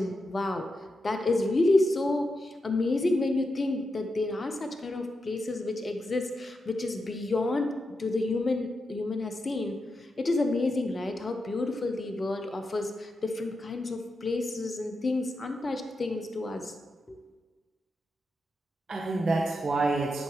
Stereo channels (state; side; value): normal; both; correlation 0.87